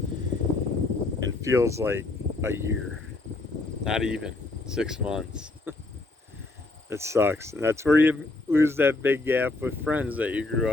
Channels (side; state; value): right; quieter; 3.2 dB